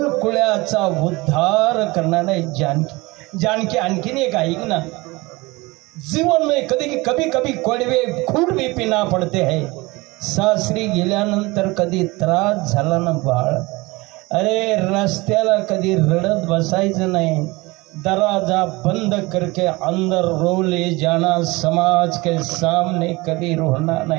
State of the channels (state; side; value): quieter; left; 22.9 dB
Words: कुळाचा उद्धार करणारा जानकी. जानकी आणखीन एक ऐक ना, जीवन में कभी कभी कड़वे खून भी पीना पड़ते हैं. सासरी गेल्यानंतर कधी त्रास झाला ना बाळ, अरे रस्त्याला कधी रडत बसायचं नाही. दरवाजा बंद करके अंदर रो ले जाना. समाज के सामने कधी रोना